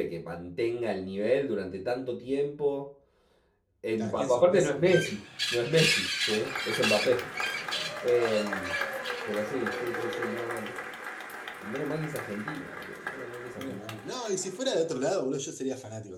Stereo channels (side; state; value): both; identical; correlation 1.00